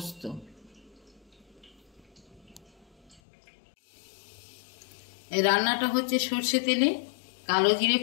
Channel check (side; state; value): right; drops out; at 3.2 s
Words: এই রান্নাটা হচ্ছে সর্ষে তেলে, কালো জিরে